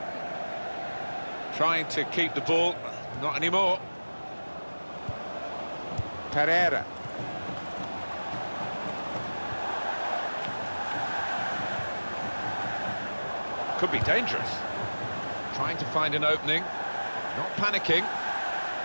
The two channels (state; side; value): inverted; both; correlation -1.00